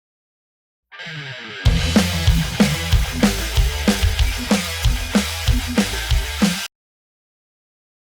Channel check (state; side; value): identical; both; correlation 1.00